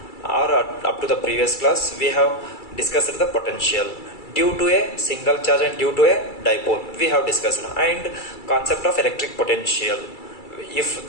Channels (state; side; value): late; right; 2.3 ms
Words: or up to the previous class, we have discussed the potential due to a single charge and due to a dipole. We have discussed and concept of electric potential. If